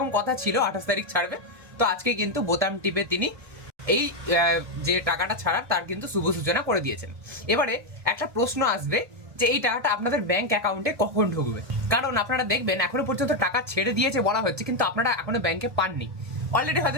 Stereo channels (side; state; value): left; late; 1.7 ms